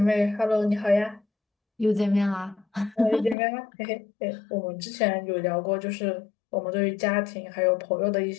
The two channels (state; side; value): drops out; right; at 3.4 s